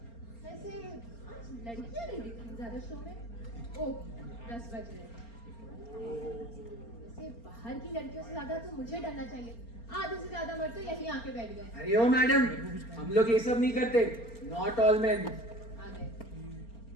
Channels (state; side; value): late; right; 4.3 ms